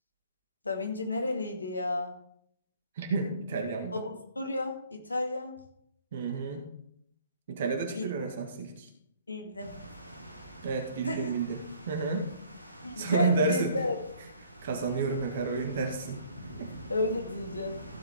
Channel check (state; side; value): inverted; both; correlation -0.57